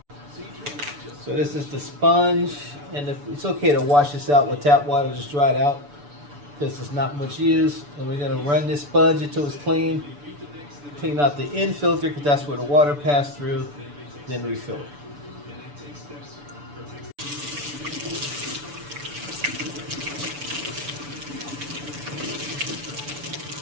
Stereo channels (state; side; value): late; left; 6.9 ms